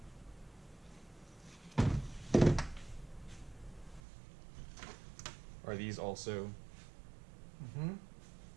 Are these also? Mm-hmm.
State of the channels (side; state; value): left; drops out; at 4.0 s